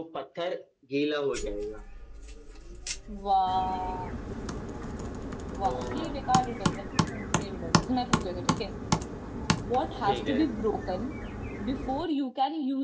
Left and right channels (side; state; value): both; identical; correlation 1.00